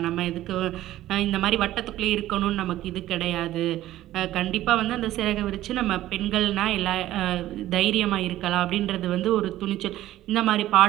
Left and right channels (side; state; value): left; quieter; 14.4 dB